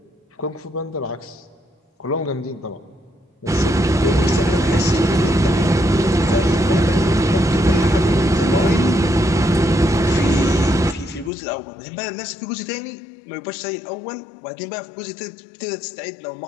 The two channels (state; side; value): drops out; right; at 11.3 s